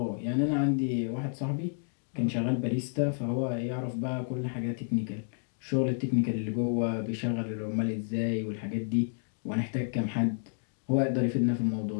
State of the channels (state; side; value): silent; right; digital silence